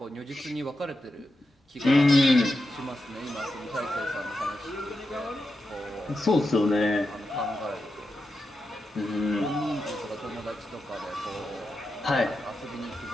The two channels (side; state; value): both; normal; correlation 0.88